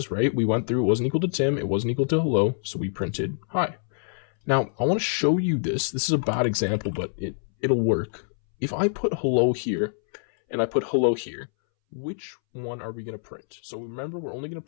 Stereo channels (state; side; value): silent; right; 61 dB below the other